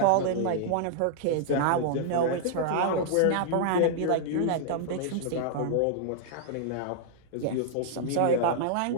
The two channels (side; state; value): both; different; correlation -0.01